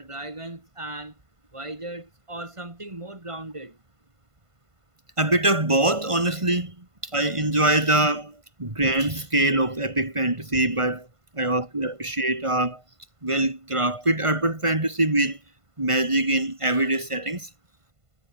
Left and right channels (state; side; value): late; left; 1.5 ms